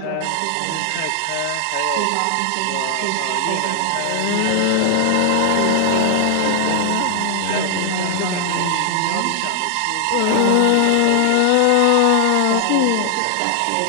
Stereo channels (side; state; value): both; different; correlation 0.00